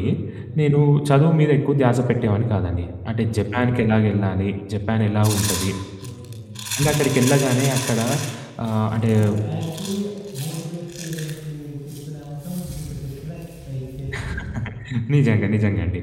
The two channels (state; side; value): identical; both; correlation 1.00